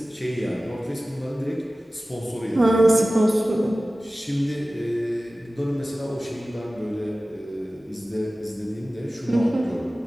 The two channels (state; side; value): normal; both; correlation 0.96